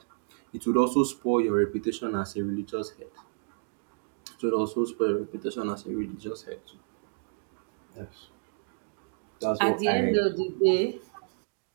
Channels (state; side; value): silent; left; digital silence